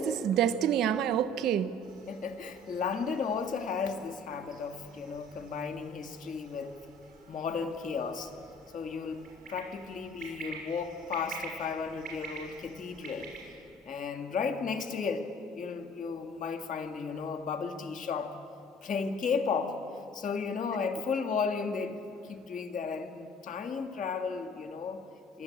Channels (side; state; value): both; normal; correlation 0.50